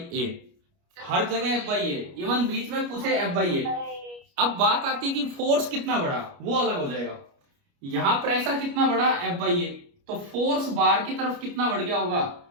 ए। हर जगह F बाई ए, इवन बीच में पूछे F बाई ए। अब बात आती है कि फोर्स कितना बढ़ा, वो अलग हो जाएगा। यहां प्रेशर कितना बढ़ा? F by A. तो फोर्स बाहर की तरफ कितना बढ़ गया होगा?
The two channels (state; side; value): late; left; 29 ms